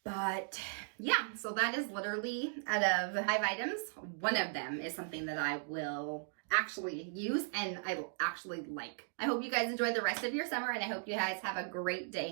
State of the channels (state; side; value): silent; left; digital silence